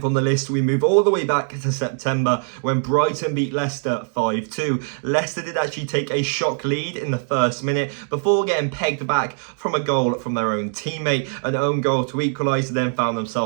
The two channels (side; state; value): left; silent; 64 dB below the other